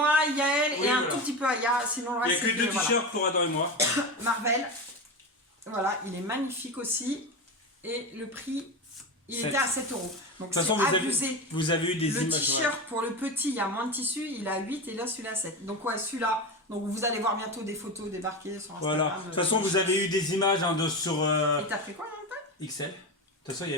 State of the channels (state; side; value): normal; both; correlation 0.21